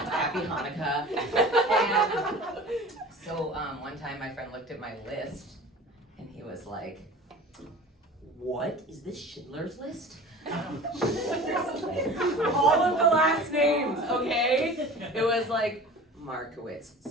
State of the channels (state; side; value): normal; both; correlation 0.39